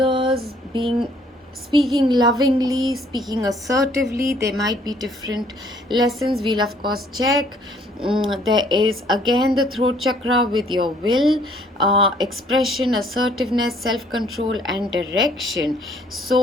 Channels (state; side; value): normal; both; correlation 0.61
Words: speaking lovingly, speaking assertively. There might be different lessons. We'll of course check. There is again the throat chakra with your will, expression, assertiveness, self-control and direction.